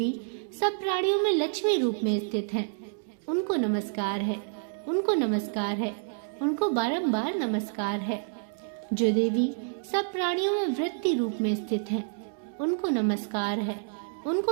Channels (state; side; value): silent; left; digital silence